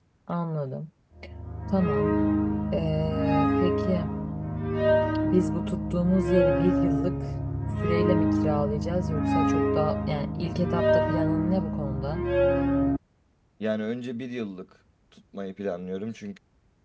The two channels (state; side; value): identical; both; correlation 1.00